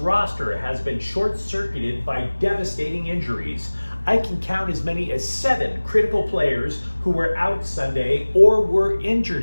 has been short-circuited by devastating injuries. I can count as many as 7 critical players who were out Sunday or were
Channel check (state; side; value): inverted; both; correlation -1.00